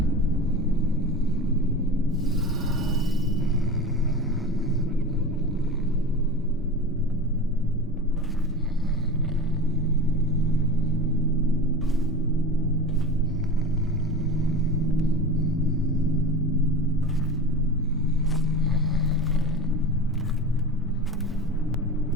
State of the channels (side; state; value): both; normal; correlation 0.32